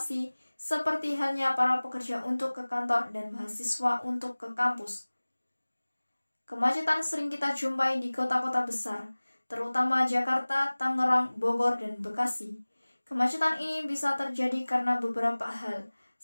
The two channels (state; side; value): inverted; both; correlation -1.00